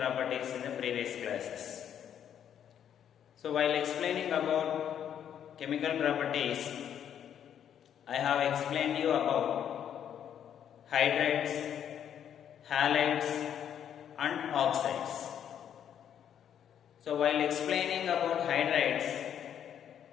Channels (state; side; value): quieter; right; 9.3 dB